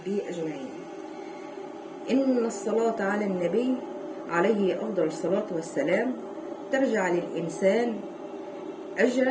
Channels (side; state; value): both; identical; correlation 1.00